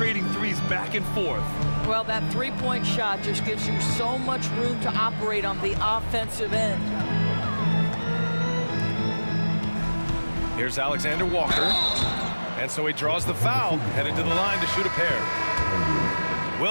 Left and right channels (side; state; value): both; inverted; correlation -1.00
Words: threes back and forth. Well, that three-point shot just gives you so much room to operate on the offensive end. Here's Alexander Walker. And so he draws the foul, headed to the line to shoot a pair.